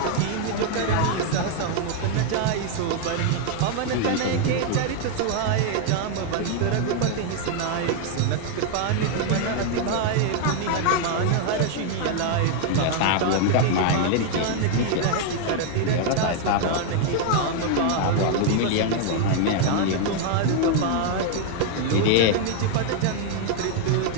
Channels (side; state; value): both; different; correlation 0.00